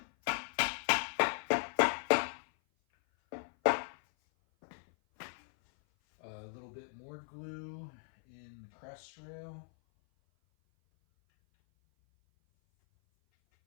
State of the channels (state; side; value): silent; right; 53 dB below the other